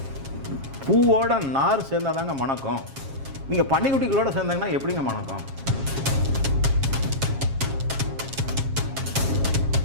பூவோட நார் சேர்ந்தாதாங்க மணக்கம். நீங்கள் பன்னிக்குட்டிகளோட சேர்ந்தாங்கன்னா எப்படிங்க மணக்கம்?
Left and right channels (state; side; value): late; left; 7.4 ms